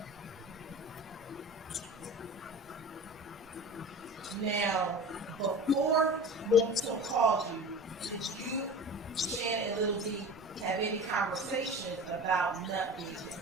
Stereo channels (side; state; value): both; normal; correlation 0.35